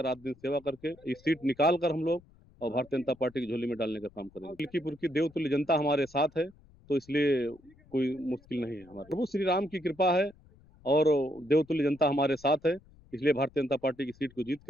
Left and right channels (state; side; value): noise; left; rumble, 27 dB below the sound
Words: रात दिन सेवा करके इस सीट निकाल कर हम लोग और भारतीय जनता पार्टी की झोली में डालने का काम करेंगे। मिल्कीपुर की देवतुल्य जनता हमारे साथ है, तो इसलिए कोई मुश्किल नहीं है। हमारे प्रभु श्री राम की कृपा है और देवतुल्य जनता हमारे साथ है, इसलिए भारतीय जनता पार्टी की सीट को